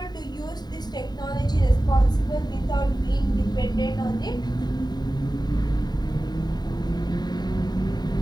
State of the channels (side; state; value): right; late; 0.20 ms